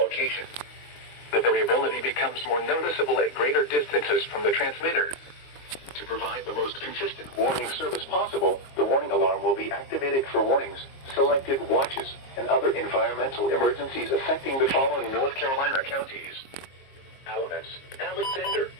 The variability becomes more noticeable at greater distances from the transmitter. To provide the most consistent warning service possible, the warning alarm will be activated for warnings, selected watches, and other environmental emergencies affecting the following North Carolina counties: Alamance, Alexander,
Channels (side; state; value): right; late; 22 ms